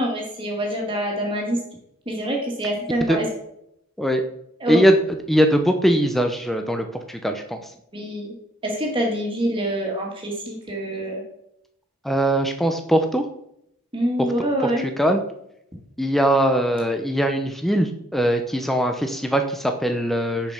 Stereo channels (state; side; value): normal; both; correlation 0.71